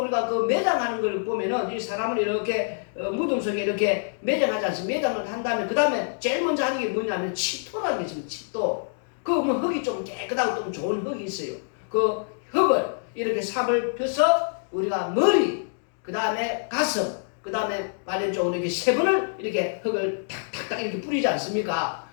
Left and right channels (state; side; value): silent; right; digital silence